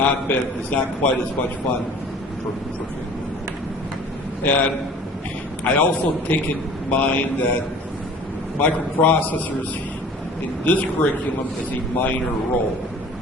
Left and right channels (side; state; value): both; normal; correlation 0.46